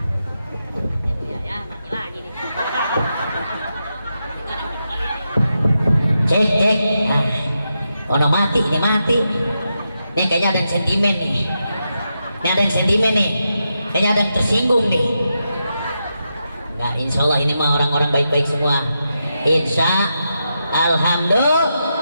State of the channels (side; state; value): both; inverted; correlation -0.86